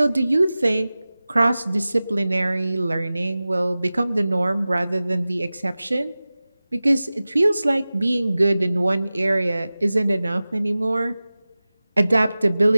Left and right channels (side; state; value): both; inverted; correlation -0.97